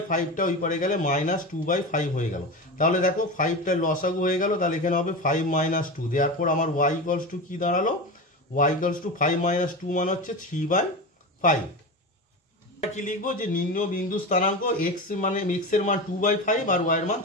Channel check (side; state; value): both; normal; correlation 0.24